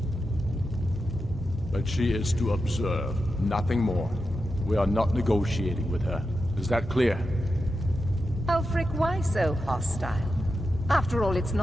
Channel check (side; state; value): both; normal; correlation 0.89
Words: But she is to observe, nothing more. We are not negotiating with her. Is that clear? Ulfric, why so hostile? After all, it's